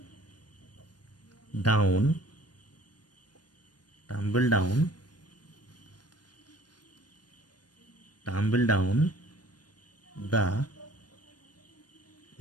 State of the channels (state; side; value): late; right; 0.69 ms